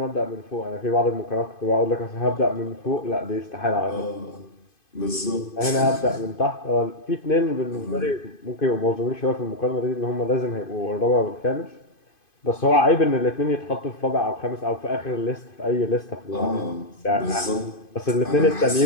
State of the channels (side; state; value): right; late; 2.5 ms